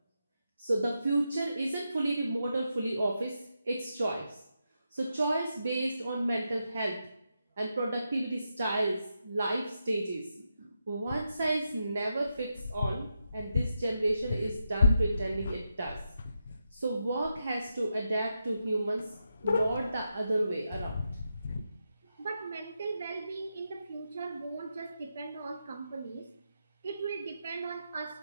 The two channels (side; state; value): both; inverted; correlation -0.86